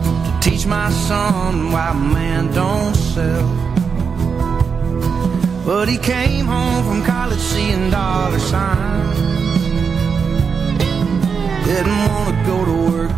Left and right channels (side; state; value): left; quieter; 5.9 dB